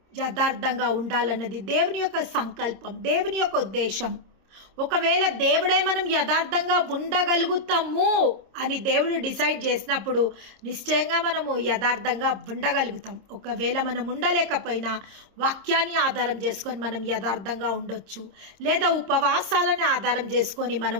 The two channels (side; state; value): left; late; 26 ms